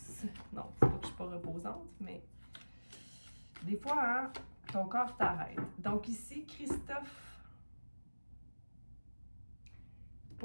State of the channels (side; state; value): both; inverted; correlation -1.00